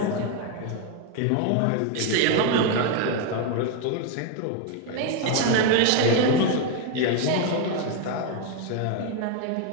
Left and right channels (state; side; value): different; both; correlation 0.02